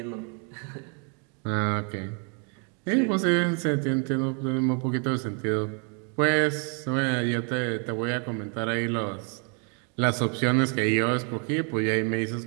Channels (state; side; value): quieter; left; 38.6 dB